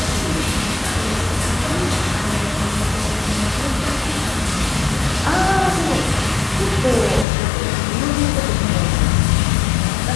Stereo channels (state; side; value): drops out; right; at 7.2 s